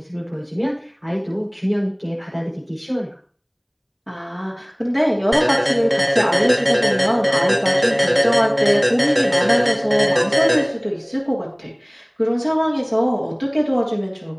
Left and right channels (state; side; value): identical; both; correlation 1.00